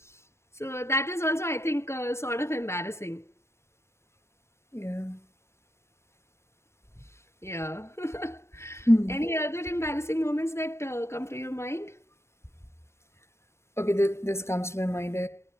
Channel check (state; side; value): late; right; 0.13 ms